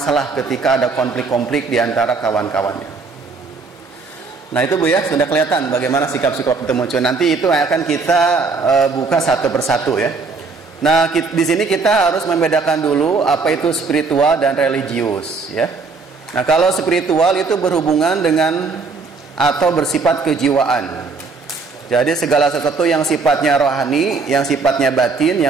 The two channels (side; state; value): left; quieter; 4.3 dB